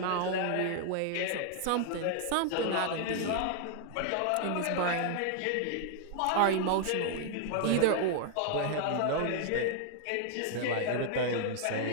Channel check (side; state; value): both; different; correlation 0.00